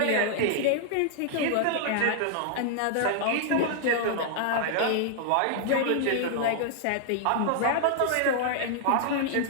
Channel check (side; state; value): both; different; correlation -0.01